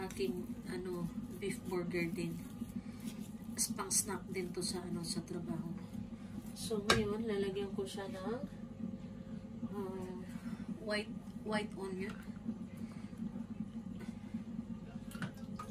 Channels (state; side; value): identical; both; correlation 1.00